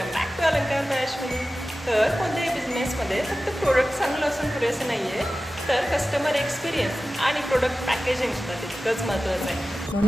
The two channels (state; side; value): normal; both; correlation 0.95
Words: back to अलंकार bye Ashwini. तर कोणत्याही बिझनेसमध्ये फक्त प्रोडक्ट चांगलं असून पुरेसं नाही आहे, तर कस्टमर एक्सपिरियन्स आणि प्रोडक्ट पॅकेजिंगसुद्धा तितकंच महत्त्वाचं आहे.